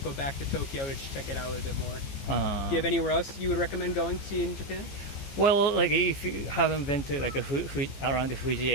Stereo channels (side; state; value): right; late; 15 ms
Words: go back to Tokyo to check it out a little bit more. Do you have anywhere else you would recommend going to see in Japan? Well, if you haven't been to around the Fuji